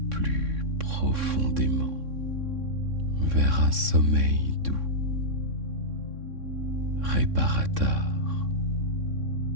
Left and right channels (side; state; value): left; late; 3.6 ms